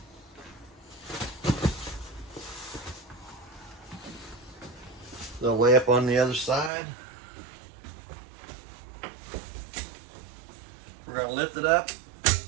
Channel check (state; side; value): drops out; left; at 6.7 s